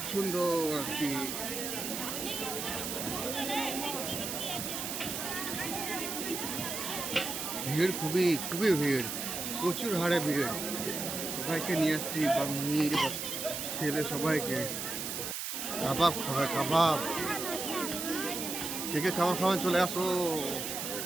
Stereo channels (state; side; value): noise; right; hiss, 4 dB below the sound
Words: সুন্দর আর কি ভিড়, খুবই খুবই ভিড়, প্রচুর হারে ভিড়। সবাইকে নিয়ে আসছি, বাঙালি ছেলে সবাইকে। কাবাব খাবে, কাবাব। কে কে কাবাব খাবেন চলে আসো।